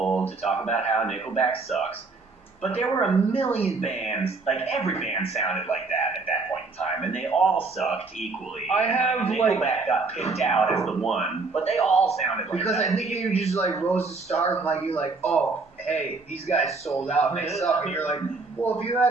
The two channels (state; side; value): quieter; left; 3.9 dB